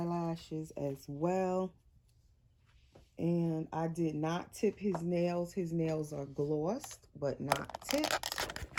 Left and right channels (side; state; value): both; identical; correlation 1.00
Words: as well. And I did not tip his nails. His nails are glossed, but not